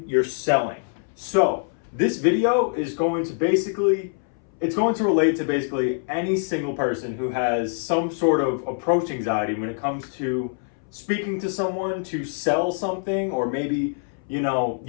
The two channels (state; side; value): silent; right; 62 dB below the other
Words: you're selling. So, this video is going to relate to basically any single person who has some sort of approach anxiety when it comes to speaking to someone to sell something, or maybe,